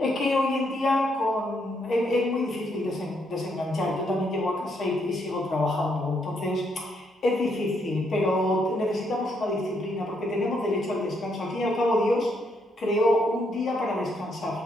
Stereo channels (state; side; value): normal; both; correlation 0.75